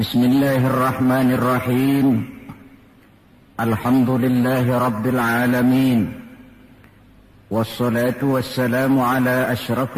Alhamdulillahi rabbil alamin. Wassalatu wassalamu ala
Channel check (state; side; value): identical; both; correlation 1.00